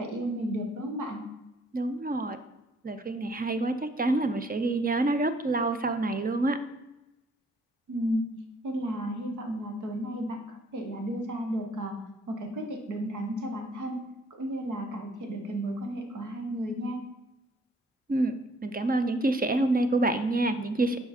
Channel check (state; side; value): normal; both; correlation 0.64